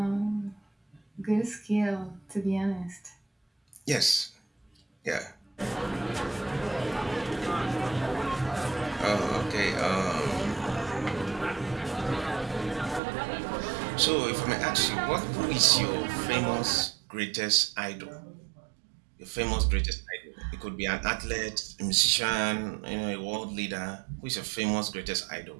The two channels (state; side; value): drops out; left; at 13.0 s